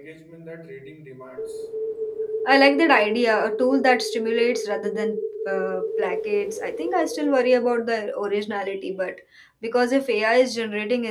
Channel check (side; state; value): both; identical; correlation 1.00